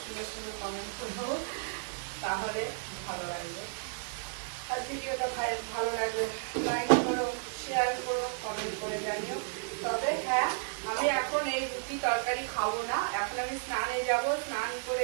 সুন্দর সুন্দর কমেন্ট করবো, তাহলে ভালো লাগবে। আর ভিডিওটা ভালো লাগবে লাইক করো, শেয়ার করো, কমেন্ট করে জানিও। তবে হ্যাঁ, আমি এখন এই রুটি তরকারি খাবো না, এখন আমি স্নানে যাব, স্নান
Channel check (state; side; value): silent; left; digital silence